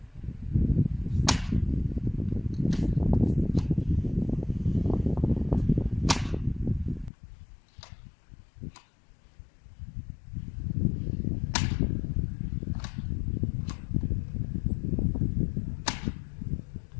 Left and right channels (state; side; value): drops out; right; at 7.1 s